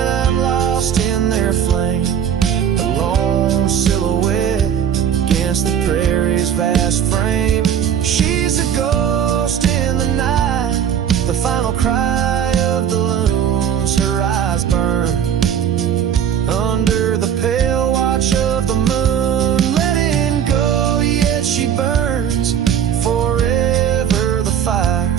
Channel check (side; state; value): left; quieter; 8.8 dB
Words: I'm lost in their flame, a lone silhouette against the prairie's vast frame. She's a ghost in the night, the final cry of the loons. Her eyes burn under the pale watch of the moon, letting go, yet she burns forever. The fire